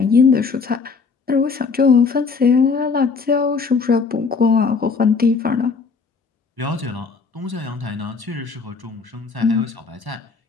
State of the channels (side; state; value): right; quieter; 4.9 dB